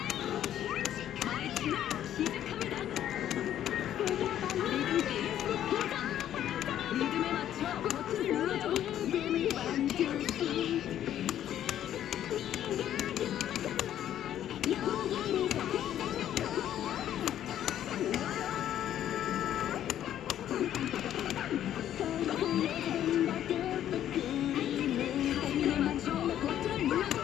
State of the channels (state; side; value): quieter; right; 11.2 dB